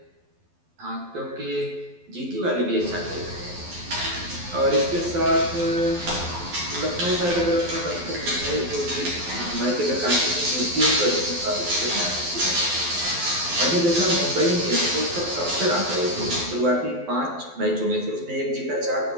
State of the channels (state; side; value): late; left; 12 ms